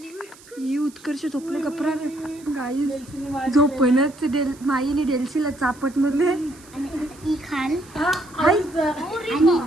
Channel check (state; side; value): noise; right; hiss, 23 dB below the sound